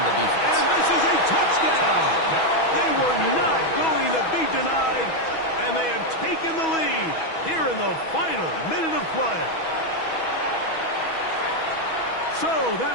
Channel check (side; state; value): right; late; 6.2 ms